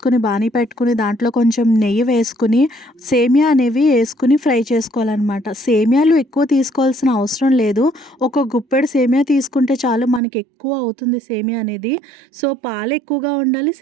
బాణీ పెట్టుకుని దాంట్లో కొంచెం నెయ్యి వేసుకుని సేమియా అనేవి వేసుకుని ఫ్రై చేసుకోవాలన్నమాట. సేమియాలు ఎక్కువ తీసుకోవాల్సిన అవసరం లేదు. ఒక గుప్పెడు సేమియా తీసుకుంటే చాలు, మనకి ఎక్కువ అవుతుంది సేమియా అనేది. సో పాలు ఎక్కువగా ఉండాలి,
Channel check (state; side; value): drops out; left; at 10.2 s